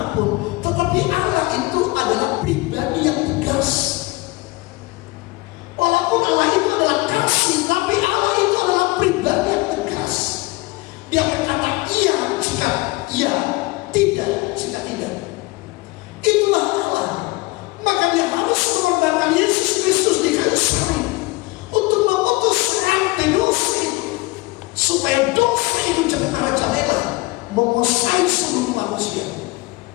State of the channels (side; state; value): right; quieter; 23.2 dB